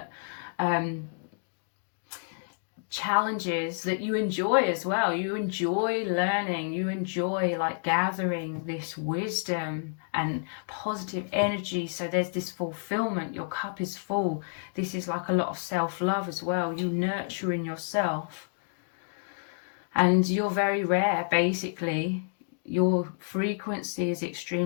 challenges that you enjoy as well. You enjoy learning, you enjoy like gathering this wisdom and positive energy. So there's this fulfillment, your cup is full. This is like a lot of self-love as well. You nurturing yourself, and you're very rare. Basically your frequency is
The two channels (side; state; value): right; silent; digital silence